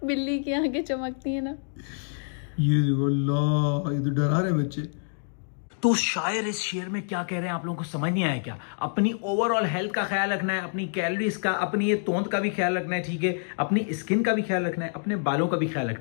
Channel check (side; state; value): right; silent; digital silence